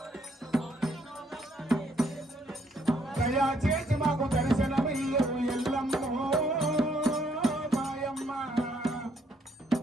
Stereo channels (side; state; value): both; normal; correlation 0.69